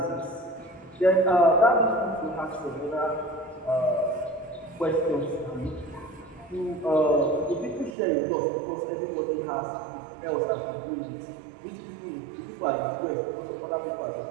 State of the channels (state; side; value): drops out; left; at 7.9 s